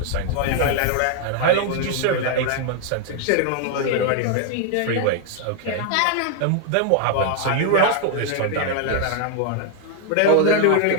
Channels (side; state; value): both; different; correlation 0.00